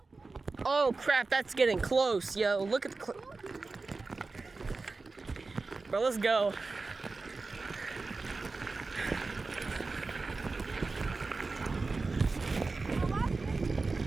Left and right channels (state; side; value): quieter; left; 3.8 dB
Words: Oh crap, that's getting close, yo. Look at the bro, let's go.